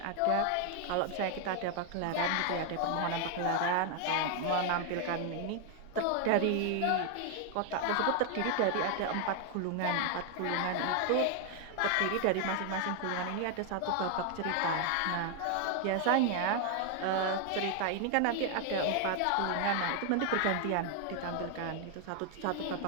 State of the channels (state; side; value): different; both; correlation 0.00